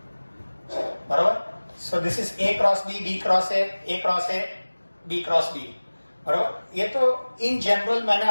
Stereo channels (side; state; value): both; inverted; correlation -1.00